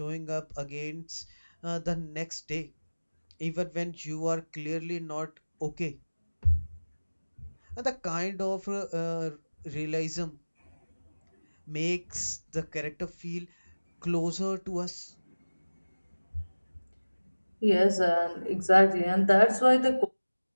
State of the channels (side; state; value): both; inverted; correlation -1.00